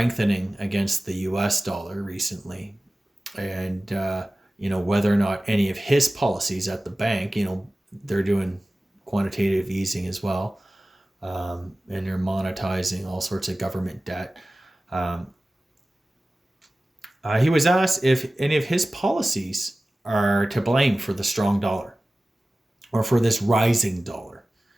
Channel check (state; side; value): normal; both; correlation 0.97